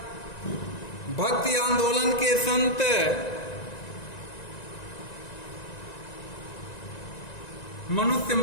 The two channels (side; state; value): right; late; 1.9 ms